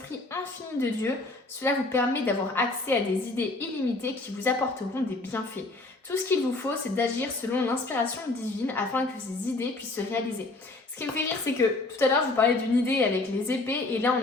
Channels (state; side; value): quieter; right; 3.1 dB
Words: infini de Dieu. Cela vous permet d'avoir accès à des idées illimitées qui vous apporteront des bienfaits. Tout ce qu'il vous faut, c'est d'agir selon l'inspiration divine afin que ces idées puissent se réaliser. Ce qui me fait rire, c'est que tout à l'heure, je vous parlais d'une idée avec les épées et là, on